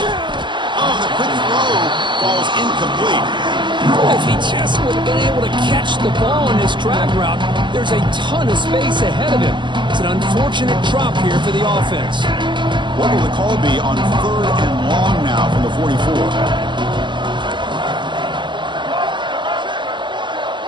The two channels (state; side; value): late; left; 0.23 ms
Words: Oh, the quick throw falls incomplete. If he just would have been able to catch the ball in this drag route, there's a ton of space ahead of him. It's an unfortunate drop here for the offense. What will the call be on third and long now from the 44?